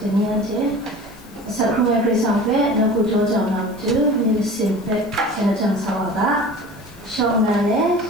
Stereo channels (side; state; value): left; noise; hiss, 25 dB below the sound